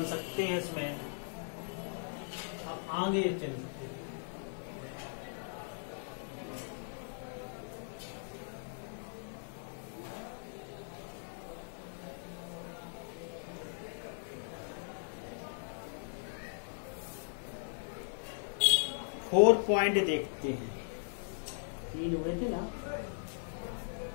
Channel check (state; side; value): silent; right; digital silence